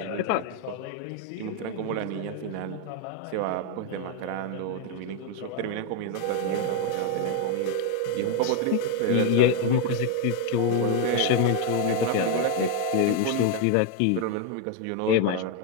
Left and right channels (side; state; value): both; different; correlation 0.01